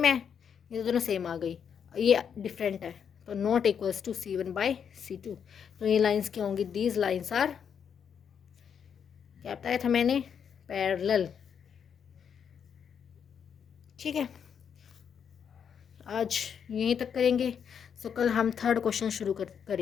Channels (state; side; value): quieter; right; 7.5 dB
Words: है, ये दोनों सेम आ गई, ये डिफरेंट है, तो नॉट इक्वल्स टू C1/C2। तो ये लाइंस क्या होंगी, दीज लाइंस आर, क्या बताया था मैंने, पैरेलल। ठीक है, आज यहीं तक करेंगे। सो कल हम थर्ड क्वेश्चन शुरू